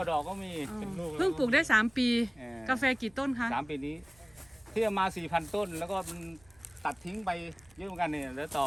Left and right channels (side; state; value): right; noise; rumble, 29 dB below the sound